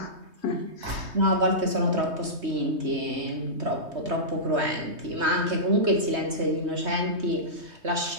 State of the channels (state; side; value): late; left; 3.2 ms